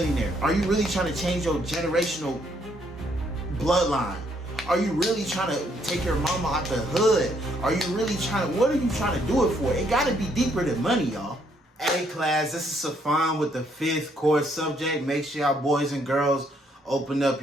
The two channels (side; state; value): both; normal; correlation 0.70